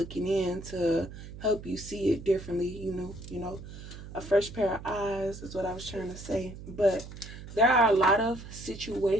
in to help you see it differently. A fresh pair of eyes is what I was trying to say. But there are a lot of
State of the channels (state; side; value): noise; right; hum, 13 dB below the sound